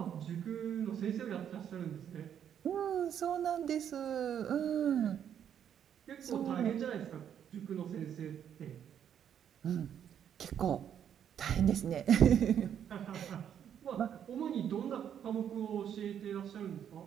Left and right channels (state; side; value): quieter; left; 9.1 dB